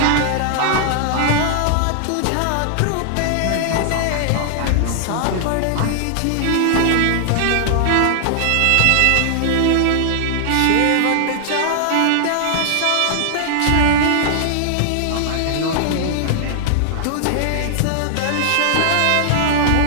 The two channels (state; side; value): different; both; correlation 0.00